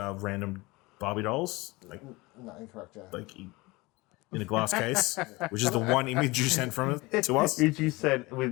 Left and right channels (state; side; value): quieter; right; 22.9 dB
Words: Barbie dolls. No, incorrect. Yeah. Like in a glass case, which is the one image you sent from it to us. Which you sent with